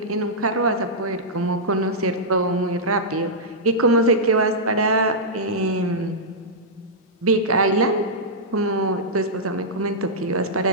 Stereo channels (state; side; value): normal; both; correlation -0.11